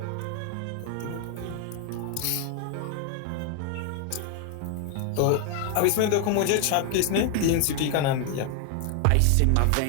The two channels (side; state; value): both; different; correlation 0.00